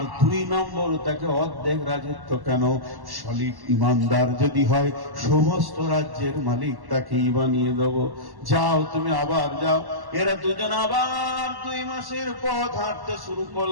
2 নম্বর, তাকে অর্ধেক রাজত্ব কেন, সলিড ইমানদার যদি হয় সমস্ত রাজ্যের মালিক তাকেই বানিয়ে দেব। যাও, তুমি আবার যাও। এরা দুজন আবার 2 মাসের পথ হাঁটতে শুরু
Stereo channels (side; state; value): left; late; 1.1 ms